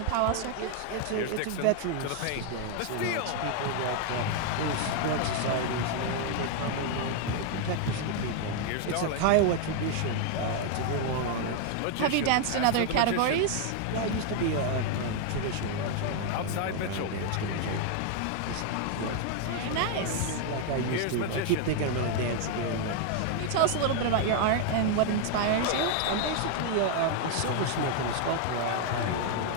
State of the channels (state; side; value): different; both; correlation 0.00